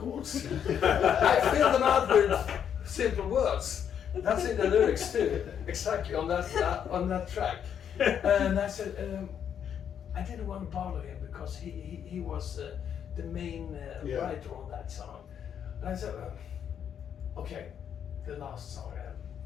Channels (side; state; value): right; quieter; 8.5 dB